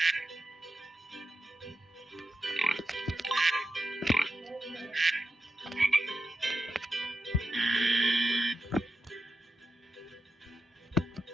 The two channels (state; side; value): normal; both; correlation 0.87